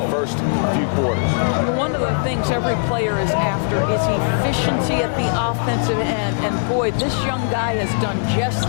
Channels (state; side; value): silent; right; digital silence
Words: first few quarters. One of the things every player is after is efficiency at the offensive end. And boy, this young guy has done just